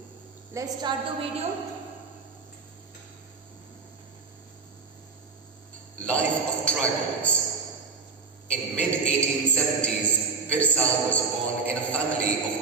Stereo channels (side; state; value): left; quieter; 4.7 dB